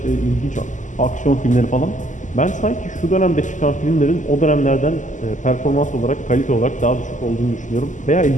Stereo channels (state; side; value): late; right; 0.37 ms